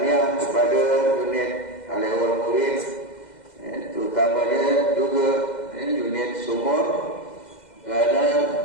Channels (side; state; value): right; late; 2.0 ms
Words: kepada unit awal murid, terutamanya juga unit sumur, kerana